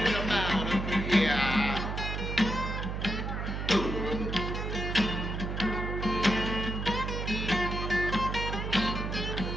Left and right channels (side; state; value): right; noise; hum, 3 dB below the sound